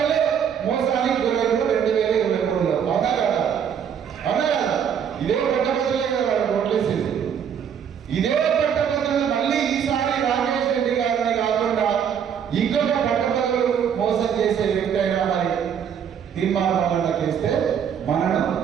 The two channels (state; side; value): quieter; left; 8.0 dB